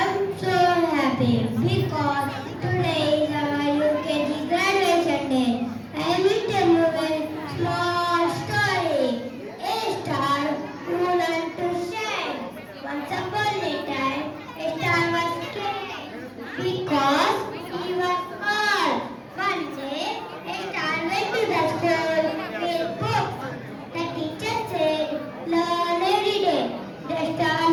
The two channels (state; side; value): identical; both; correlation 1.00